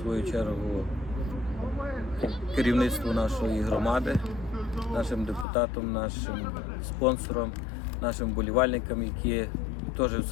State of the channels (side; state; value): right; drops out; at 5.5 s